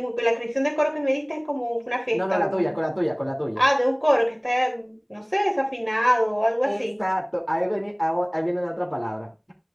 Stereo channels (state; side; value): identical; both; correlation 1.00